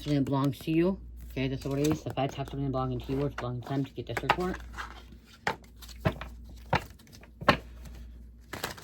that belongs to you. Okay, that's what it is. The feds have something belonging to you or it's belonging to them to get this report.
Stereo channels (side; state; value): both; identical; correlation 1.00